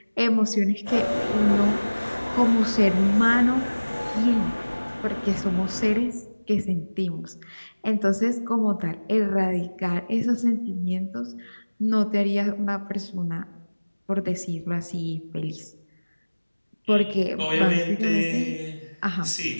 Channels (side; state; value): both; inverted; correlation -1.00